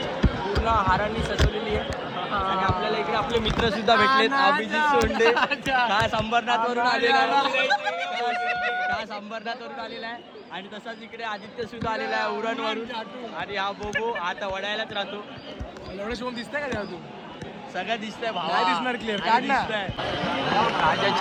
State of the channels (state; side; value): identical; both; correlation 1.00